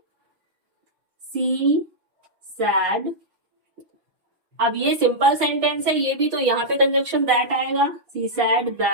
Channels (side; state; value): left; late; 6.1 ms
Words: सी सैड। अब ये सिंपल सेंटेंस है ये भी, तो यहाँ पे कंजक्शन दैट आएगा, she said